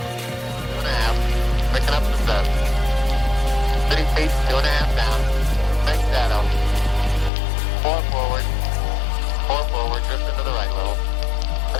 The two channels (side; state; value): right; drops out; at 7.3 s